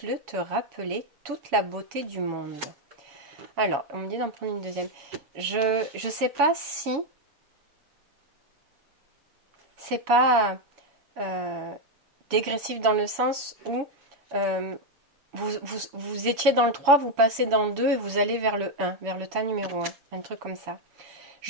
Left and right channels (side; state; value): left; late; 6.9 ms